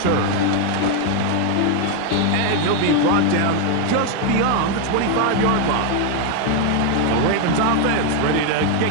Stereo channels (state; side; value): different; both; correlation 0.01